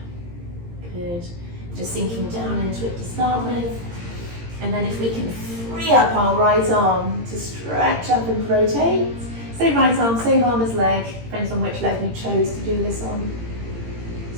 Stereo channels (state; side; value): late; left; 17 ms